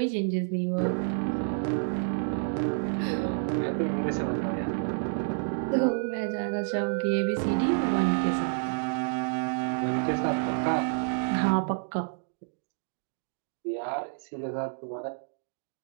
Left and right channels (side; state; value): left; silent; digital silence